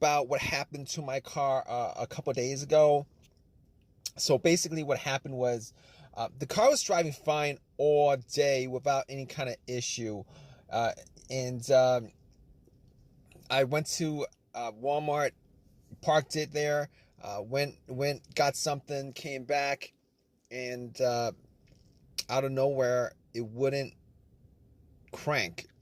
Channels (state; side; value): identical; both; correlation 1.00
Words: what happened to my car a couple days ago. So basically, what happened was the car was driving fine all day without any kind of issue, uh, and I went to Walmart, parked it there, went, got something, came back, and out of nowhere, it wouldn't crank.